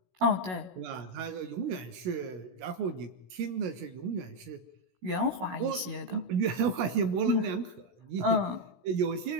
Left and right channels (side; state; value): left; late; 16 ms